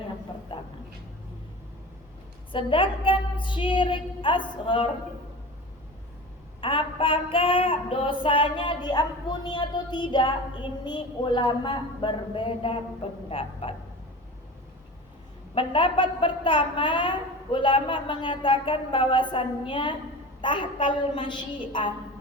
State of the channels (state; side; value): normal; both; correlation 0.34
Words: yang pertama. Sedangkan syirik asghar, apakah dosanya diampuni atau tidak? Ini ulama berbeda pendapat. Pendapat pertama, ulama mengatakan bahwasannya tahtal masyiah.